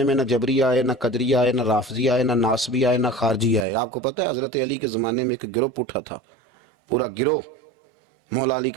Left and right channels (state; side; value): drops out; left; at 3.7 s